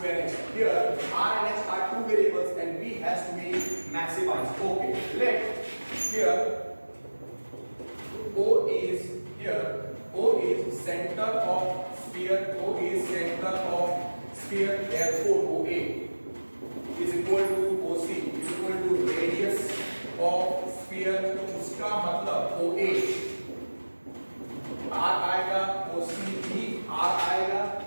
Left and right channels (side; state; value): both; inverted; correlation -1.00